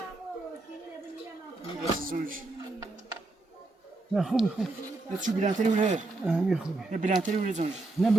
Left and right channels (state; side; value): quieter; left; 3.2 dB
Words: نه خوبه خوب یه چو بلندتری بوده همین خوبه یه بلندتری بوده زنش نه